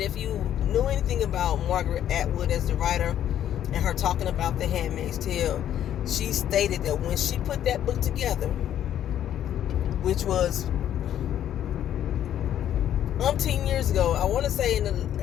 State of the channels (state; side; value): quieter; right; 10.8 dB